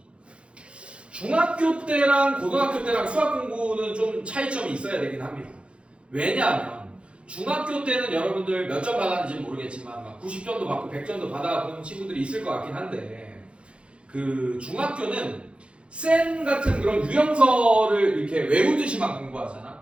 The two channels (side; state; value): left; late; 0.059 ms